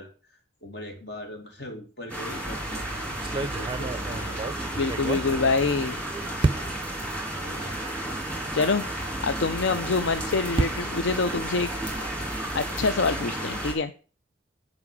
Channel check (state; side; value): normal; both; correlation 0.12